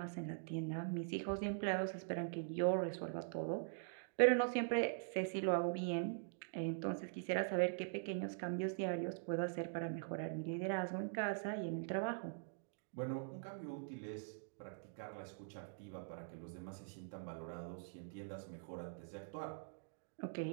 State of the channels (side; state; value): left; silent; digital silence